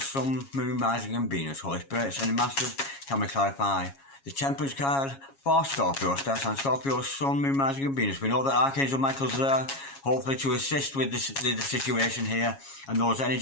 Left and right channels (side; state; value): right; late; 7.3 ms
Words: Moon, Rising and Venus. Holy Spirit, sending masters. Can we clarify the Temperance card for Scorpio? Star sign, Scorpio, Sun, Moon, Rising and Venus. We know that Archangel Michael's there, hopefully to assist with the situation here. And those